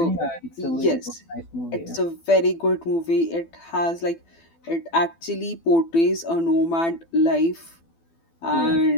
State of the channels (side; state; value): right; late; 12 ms